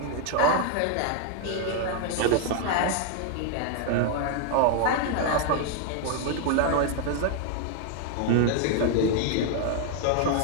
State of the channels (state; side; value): different; both; correlation 0.00